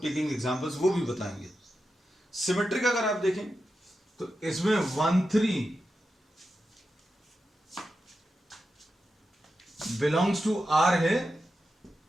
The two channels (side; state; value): both; normal; correlation 0.89